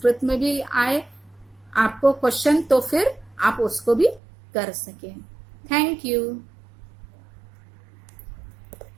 में भी आए आपको क्वेश्चन, तो फिर आप उसको भी कर सकें। Thank you.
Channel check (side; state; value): left; drops out; at 4.2 s